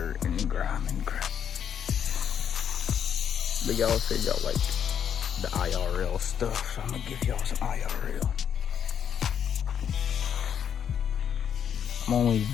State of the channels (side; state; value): right; quieter; 8.4 dB